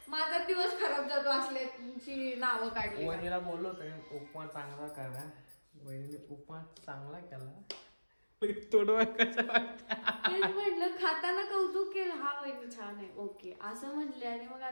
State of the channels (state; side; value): inverted; both; correlation -1.00